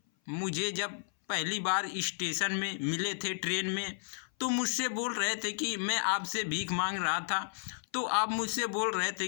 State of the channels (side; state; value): right; silent; 56 dB below the other